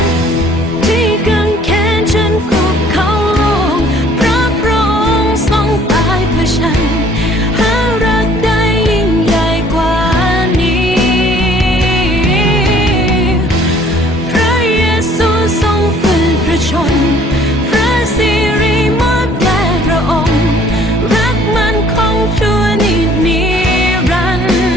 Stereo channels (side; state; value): both; normal; correlation 0.57